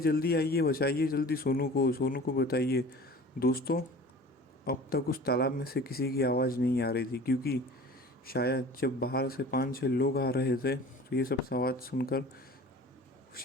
आइए, बचाइए जल्दी सोनू को, सोनू को बताइए। दोस्तों अब तक उस तालाब में से किसी की आवाज़ नहीं आ रही थी, क्योंकि शायद जब बाहर से 5-6 लोग आ रहे थे तो ये सब आवाज़ सुनकर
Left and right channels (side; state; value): both; normal; correlation 0.42